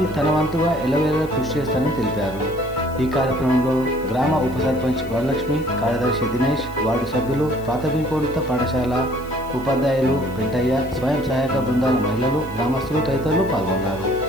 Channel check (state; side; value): noise; left; hiss, 23 dB below the sound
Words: తన వంతుగా ఎల్లవేళలా కృషి చేస్తానని తెలిపారు. ఈ కార్యక్రమంలో గ్రామ ఉప సర్పంచ్ వరలక్ష్మి, కార్యదర్శి దినేష్, వార్డు సభ్యులు, ప్రాథమికోన్నత పాఠశాల ఉపాధ్యాయులు, పెంటయ్య, స్వయం సహాయక బృందాల మహిళలు, గ్రామస్తులు తదితరులు పాల్గొన్నారు.